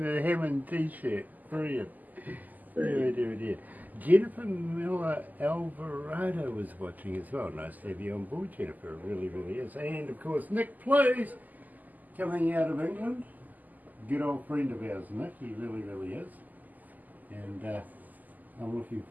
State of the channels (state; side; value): late; left; 0.082 ms